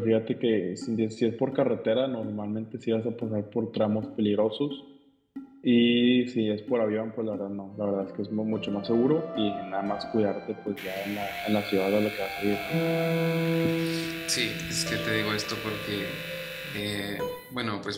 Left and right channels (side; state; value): both; identical; correlation 1.00